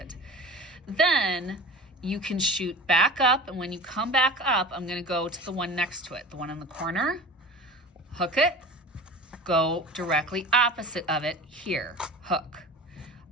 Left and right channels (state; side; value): normal; both; correlation 0.36